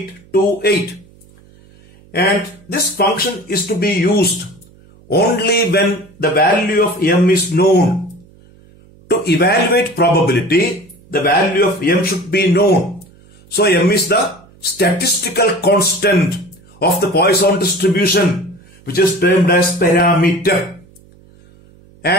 And this function is to be used only when the value of m is known. To evaluate probability, the value of m should be known. So m is the statistical constant of the Poisson distribution, which is termed as parameter.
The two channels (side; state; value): right; noise; hum, 27 dB below the sound